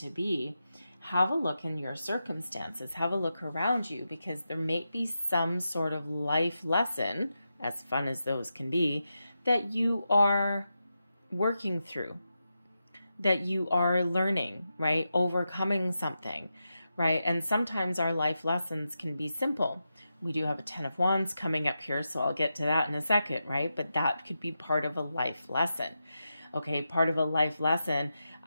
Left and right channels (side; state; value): both; inverted; correlation -0.89